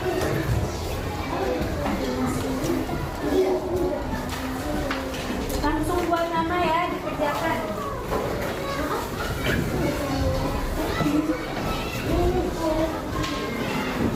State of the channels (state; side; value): identical; both; correlation 1.00